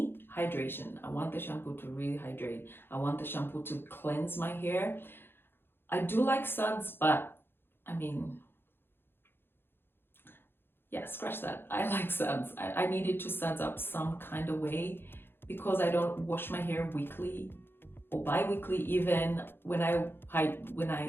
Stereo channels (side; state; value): right; late; 0.10 ms